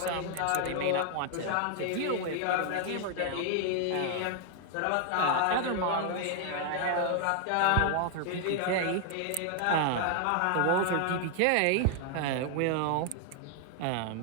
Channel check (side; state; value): both; different; correlation 0.00